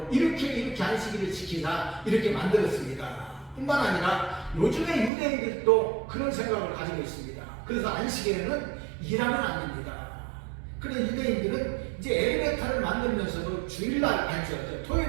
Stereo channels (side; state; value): left; drops out; at 5.1 s